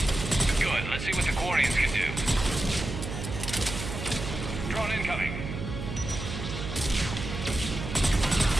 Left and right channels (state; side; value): noise; right; hum, 6 dB below the sound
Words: Good. Let's see what the Quarians can do. Drone incoming.